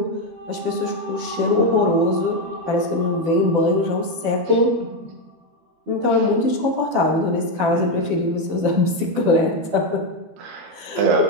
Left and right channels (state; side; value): late; left; 12 ms